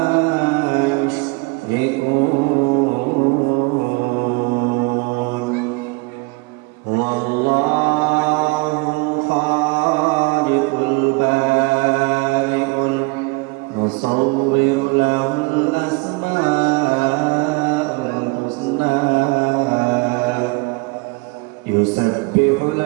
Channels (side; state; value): left; quieter; 27.1 dB